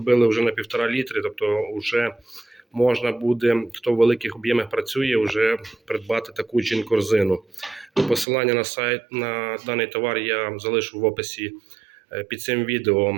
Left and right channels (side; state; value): left; drops out; at 8.2 s